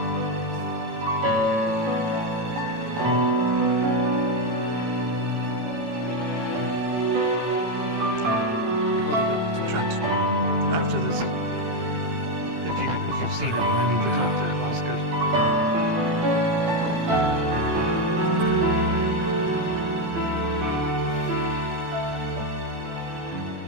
After this, if you've seen him, I need to talk to Osgood.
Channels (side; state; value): left; late; 18 ms